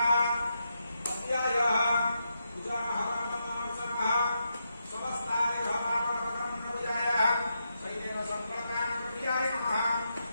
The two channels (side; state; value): both; inverted; correlation -0.84